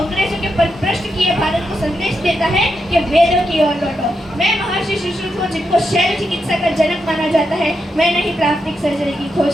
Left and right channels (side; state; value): both; normal; correlation 0.84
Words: के परभ्रष्ट किए भारत को संदेश देता है कि वेदों की ओर लौटो। मैं महर्षि सुश्रुत हूँ, जिनको शैल चिकित्सा का जनक माना जाता है। मैंने ही प्लास्टिक सर्जरी की